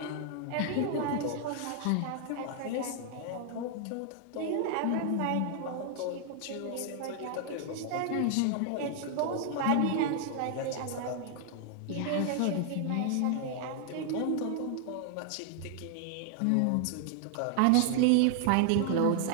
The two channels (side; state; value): both; different; correlation 0.00